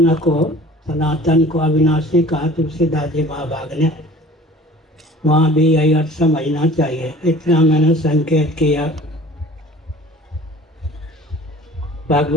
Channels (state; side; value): normal; both; correlation 0.46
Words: को अविनाशी कहा तुलसीदास जी महाभाग ने। वहाँ भी यही अर्थ समझना चाहिए। इतना मैंने संकेत किया।